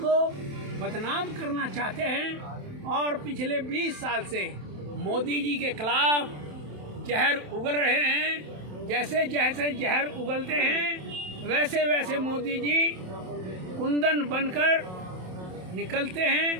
बदनाम करना चाहते हैं और पिछले 20 साल से मोदी जी के खिलाफ जहर उगल रहे हैं। जैसे जैसे जहर उगलते हैं वैसे वैसे मोदी जी कुंदन बनकर निकलते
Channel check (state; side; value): late; left; 27 ms